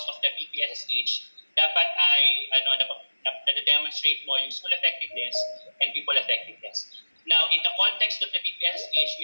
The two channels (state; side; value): inverted; both; correlation -1.00